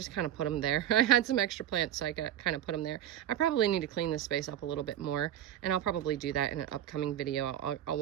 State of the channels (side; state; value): left; quieter; 11.4 dB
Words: kind of put them there. I had some extra plants, so I kind of put them there. I probably need to clean this space up a little bit more, and I'll probably do that in an upcoming video. I'll